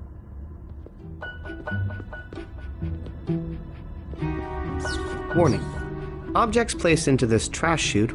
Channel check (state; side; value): identical; both; correlation 1.00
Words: Warning. Objects placed into this trash chute